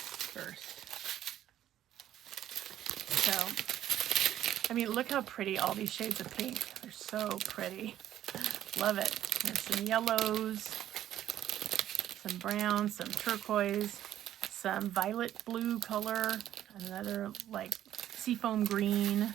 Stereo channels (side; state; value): left; quieter; 11.9 dB